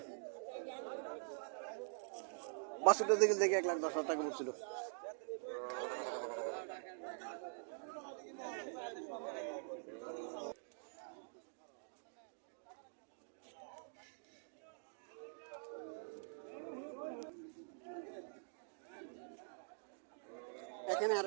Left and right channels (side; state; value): left; silent; digital silence